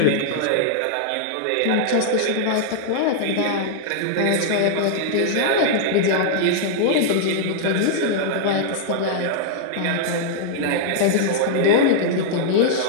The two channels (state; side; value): different; both; correlation -0.01